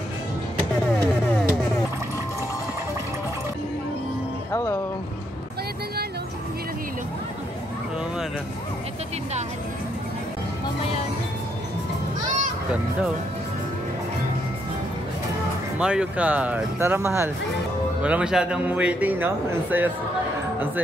Hello. Kaya na nga, no? Hilo-hilo. Oo nga na. Ito tindahan. Mamaya na. Ganda oh. Mario Kart. Tara mahal. Wala masyadong waiting, no? Ang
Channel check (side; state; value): both; normal; correlation 0.75